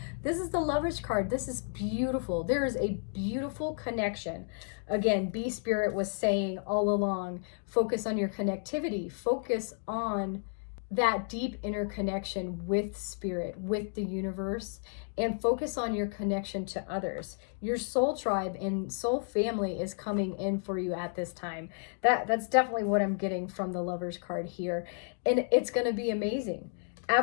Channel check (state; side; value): silent; right; 57 dB below the other